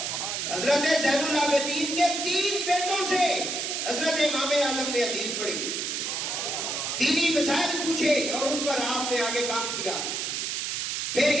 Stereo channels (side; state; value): right; noise; hiss, 2 dB below the sound